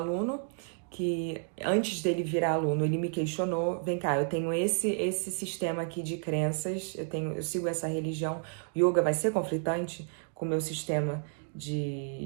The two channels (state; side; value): silent; left; 57 dB below the other